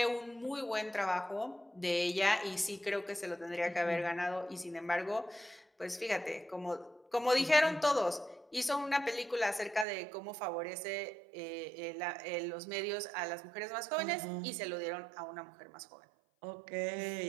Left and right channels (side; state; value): left; drops out; at 9.9 s